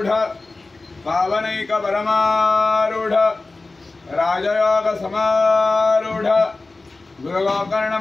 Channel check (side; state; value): right; quieter; 3.4 dB